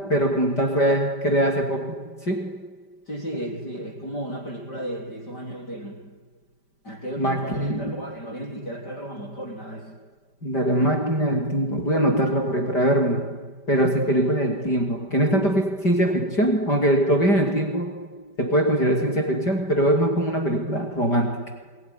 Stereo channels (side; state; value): right; late; 5.1 ms